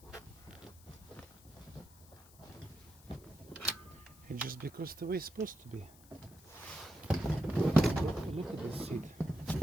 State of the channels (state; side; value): noise; left; hiss, 23 dB below the sound